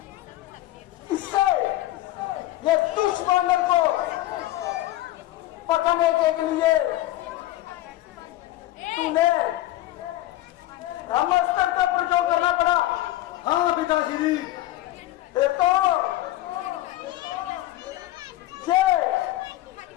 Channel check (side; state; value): right; quieter; 15.8 dB